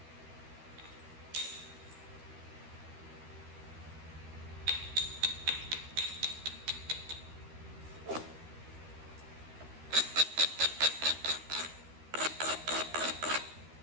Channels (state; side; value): late; left; 13 ms